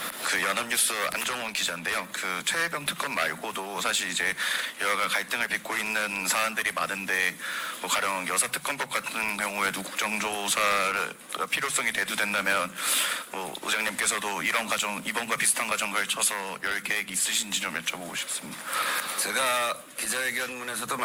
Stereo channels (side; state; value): both; identical; correlation 1.00